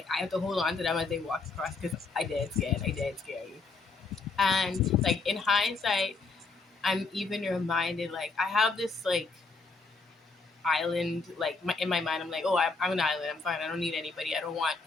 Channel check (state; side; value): quieter; right; 4.1 dB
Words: I have to hold on to them as they walk across because I dead scared. I dead scared. And like in hindsight, I'm even reminded like I have this like island like in my mind. I'm like, oh, I'm an island, I'm fine, I don't need anybody, I don't want